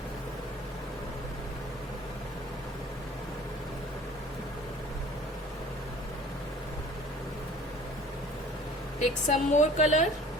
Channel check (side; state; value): both; normal; correlation 0.48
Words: Take some more color.